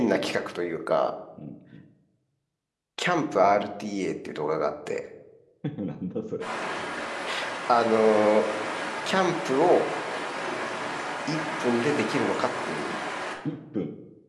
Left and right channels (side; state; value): both; identical; correlation 1.00